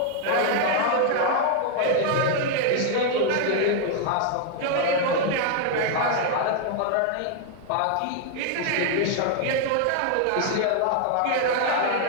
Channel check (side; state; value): both; different; correlation 0.00